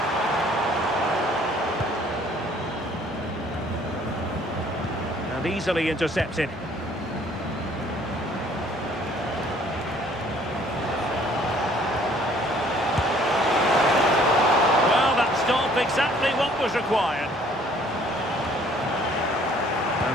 And easily intercepted. Well, that stopped exactly what was required.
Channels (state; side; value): normal; both; correlation 0.58